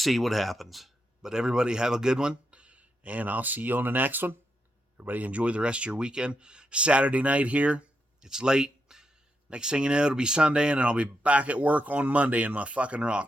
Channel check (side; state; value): both; normal; correlation 0.83